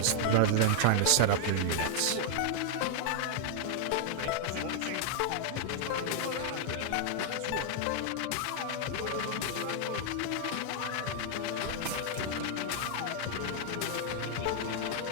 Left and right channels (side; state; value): both; different; correlation 0.00